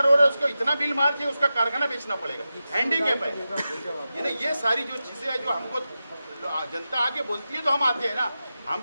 रहे, उसको इतना बिल मार के उसका कारखाना बेचना पड़ेगा, हैंडीकैप है। यानी ये सारी जो चीजें हैं जो हमको जनता आके बोलती है तो हम आते हैं ना, हम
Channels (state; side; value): inverted; both; correlation -0.92